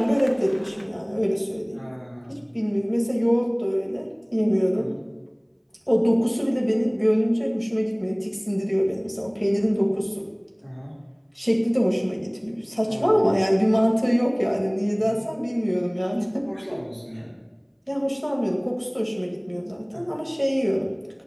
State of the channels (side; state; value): both; identical; correlation 1.00